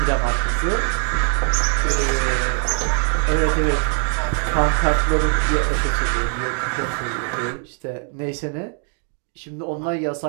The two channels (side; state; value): left; quieter; 39.2 dB